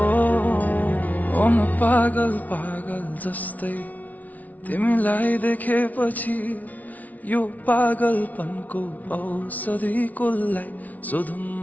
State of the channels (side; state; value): right; late; 0.074 ms